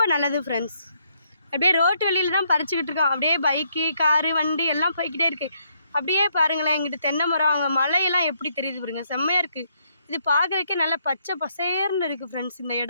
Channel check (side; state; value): both; inverted; correlation -0.74